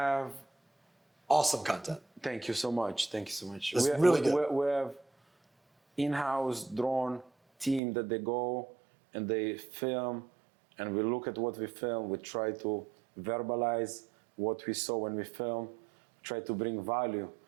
Awesome content. Thank you so much. Thank you so much. That's really good. We have in-house drone team that they go and they film, and we look at what we film. We try to verbalize what we saw when we film. Try to bring value.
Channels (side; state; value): left; drops out; at 7.8 s